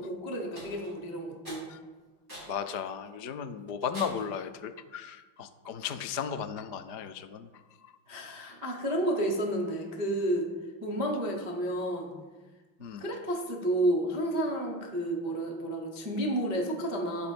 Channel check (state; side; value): late; left; 5.0 ms